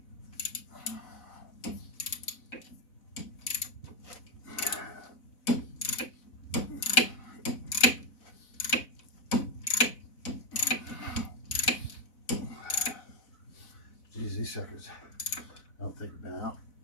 Geez, these suckers, I don't think have been out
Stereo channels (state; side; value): late; right; 4.0 ms